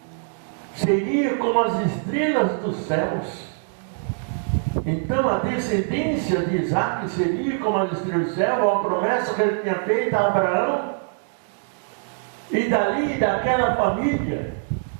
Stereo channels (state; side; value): silent; left; digital silence